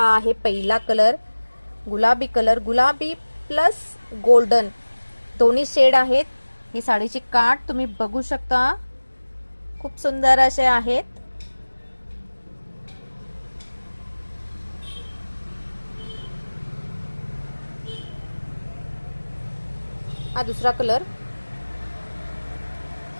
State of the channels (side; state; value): both; inverted; correlation -1.00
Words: आहे पहिला कलर, गुलाबी कलर, गुलाबी प्लस गोल्डन दोन्ही शेड आहेत। ही साडीची काठ तुम्ही बघू शकता, खूप सुंदर असे आहेत। हा दुसरा कलर,